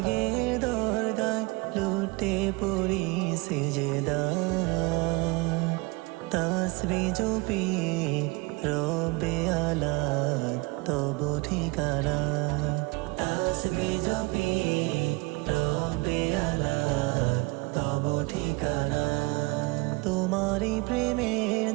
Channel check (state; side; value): quieter; left; 25.4 dB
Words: দরগায় লুটে পড়ি সিজদায়, তাসবিহ জপি রব্বে আলা তব ঠিকানায়। তাসবিহ জপি রব্বে আলা তব ঠিকানায়। তোমারই প্রেমের